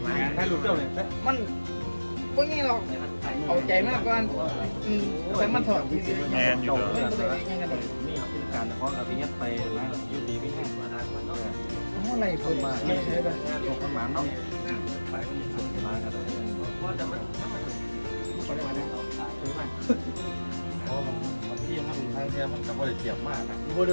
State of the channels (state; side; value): inverted; both; correlation -1.00